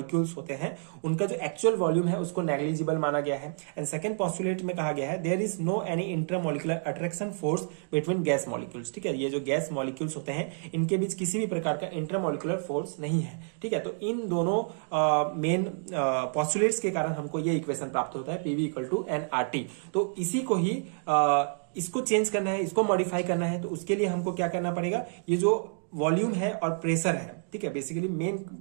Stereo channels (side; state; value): left; silent; digital silence